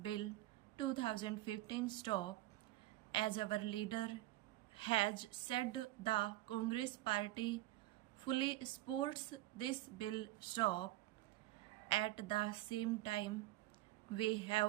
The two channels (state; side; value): quieter; left; 16.7 dB